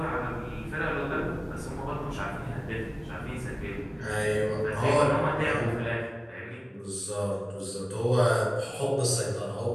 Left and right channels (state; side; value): identical; both; correlation 1.00